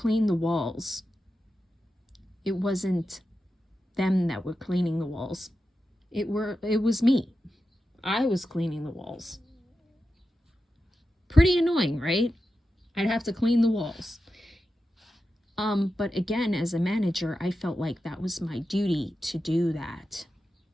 the walls, it wasn't them that were cleaning the walls. It was me. I was cleaning the walls. Pretty annoying, right? I'd have to clean the walls. But again, as a manager, I felt like that was my duty to do that.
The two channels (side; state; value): both; normal; correlation 0.91